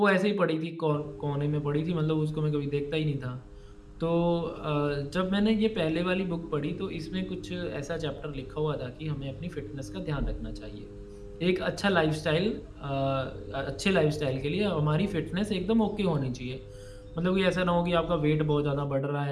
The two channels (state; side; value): identical; both; correlation 1.00